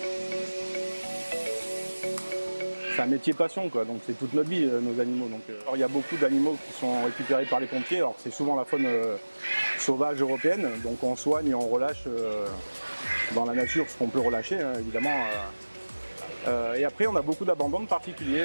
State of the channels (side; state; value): both; inverted; correlation -1.00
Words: C'est un métier passion, quoi. Donc c'est toute notre vie, nos animaux. Donc, alors, il y a beaucoup d'animaux qui sont récupérés par les pompiers. Alors c'est souvent la faune sauvage européenne. Donc on soigne et on relâche dans la nature ce qu'on peut relâcher, hein, évidemment. Et après, on a beaucoup d'abandons de